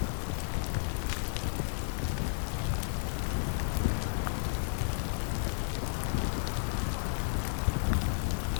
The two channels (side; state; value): right; silent; digital silence